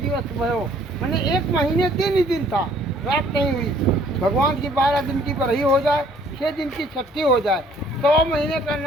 भयो, मैंने 1 महीने दिन ही दिन था, रात नहीं हुई। भगवान की 12 दिन की बरही हो जाए, 6 दिन की छठी हो जाए, 100 महीने का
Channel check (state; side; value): normal; both; correlation 0.59